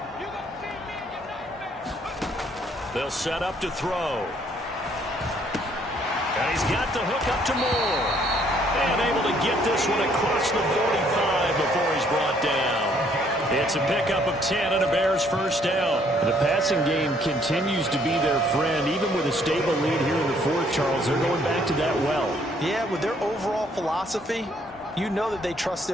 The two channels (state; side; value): normal; both; correlation 0.65